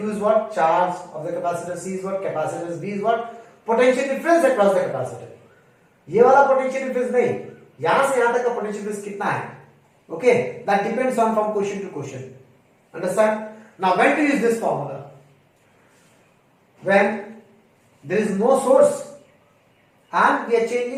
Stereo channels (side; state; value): both; identical; correlation 1.00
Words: is what? Charge of the capacitor, C is what? Capacitance, V is what? Potential difference across the capacitor. ये वाला potential difference नहीं, यहाँ से यहाँ तक का potential difference कितना है? Okay, that depends on from question to question. Understand? Now, when to use this formula? When there is no source and we are